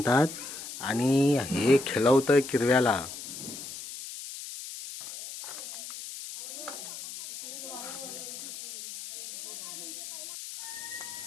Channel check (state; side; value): noise; left; hiss, 10 dB below the sound